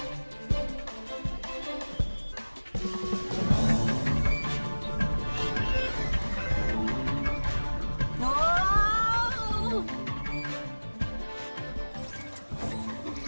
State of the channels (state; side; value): inverted; both; correlation -1.00